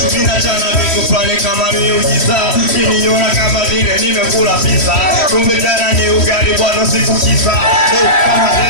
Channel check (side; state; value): right; late; 3.1 ms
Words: ninachana vitu fulani kama miujiza niliona kama vile nimekula pizza kumbe jana ni ugali bwana sikukiza kama